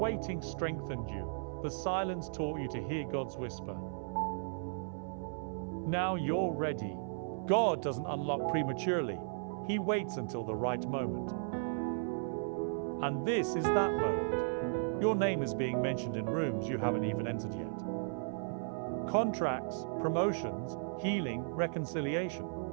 strengthened you, the silence taught you to hear God's whisper. Now you're ready. God doesn't unlock prematurely. He waits until the right moment. And this is that moment. Your name is being mentioned in rooms you haven't even entered yet. Contracts, promotions, healing, reconciliation.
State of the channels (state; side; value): silent; left; 54 dB below the other